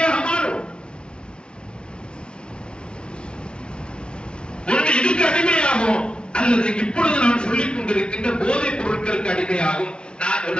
மாறும், ஒன்று இதுக்கு அடிமையாகும், அல்லது இப்பொழுது நான் சொல்லிக் கொண்டிருக்கின்ற போதைப் பொருட்களுக்கு அடிமையாகும்.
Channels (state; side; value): late; right; 0.056 ms